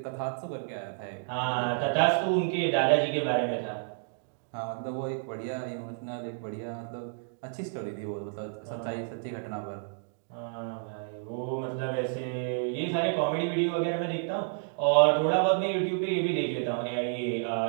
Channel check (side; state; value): left; silent; digital silence